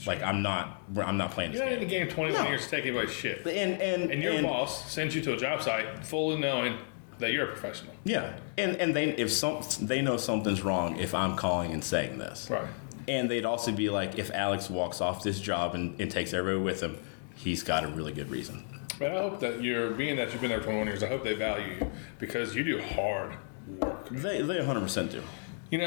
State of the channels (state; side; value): silent; right; 56 dB below the other